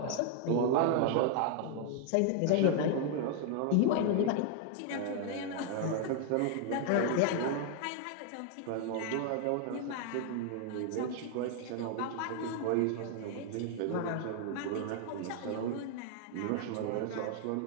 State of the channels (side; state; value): both; different; correlation 0.00